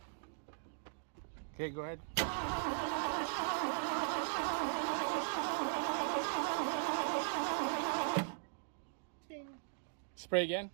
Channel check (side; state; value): left; silent; digital silence